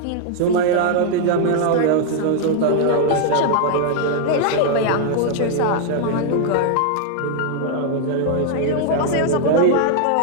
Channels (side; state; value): both; different; correlation 0.00